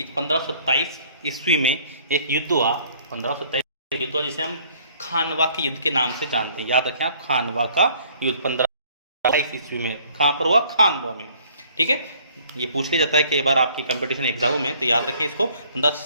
1527 ईस्वी में एक युद्ध हुआ। 1527 युद्ध हुआ जिसे हम खानवा के युद्ध के नाम से जानते हैं। याद रखें आप, खानवा का युद्ध 1527 ईस्वी में कहाँ पर हुआ? खानवा में। ठीक है, ये पूछ लिया जाता है कि बार आपकी कंपटीशन एग्जाम में, तो याद रखें इसको।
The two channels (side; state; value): both; inverted; correlation -0.58